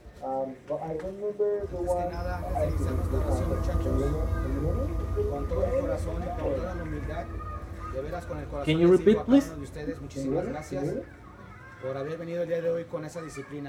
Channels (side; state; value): both; identical; correlation 1.00